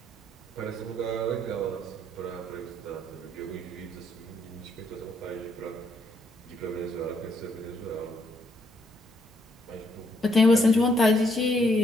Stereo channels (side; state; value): both; normal; correlation 0.72